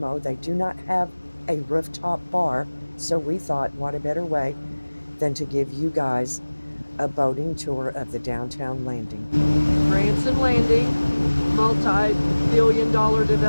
They do not have a rooftop bar, so we thought, what a better way than to give you guys a boating tour of the downtown landing. Branson Landing, multi-billion-dollar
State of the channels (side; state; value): both; inverted; correlation -1.00